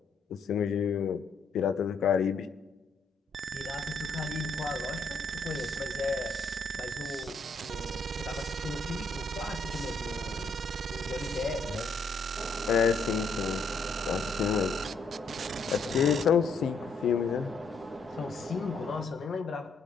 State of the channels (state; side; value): quieter; right; 3.4 dB